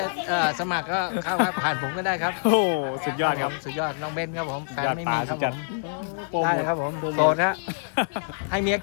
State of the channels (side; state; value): right; silent; digital silence